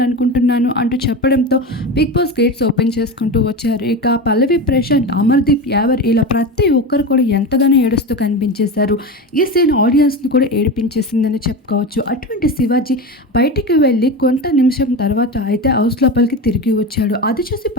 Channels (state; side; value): normal; both; correlation 0.23